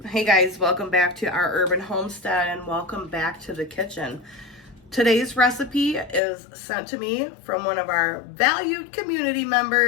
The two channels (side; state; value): right; drops out; at 6.2 s